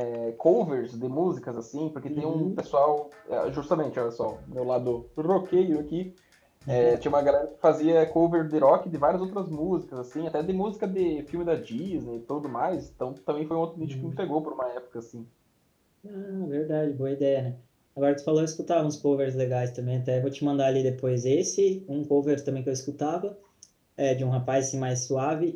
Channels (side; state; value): both; identical; correlation 1.00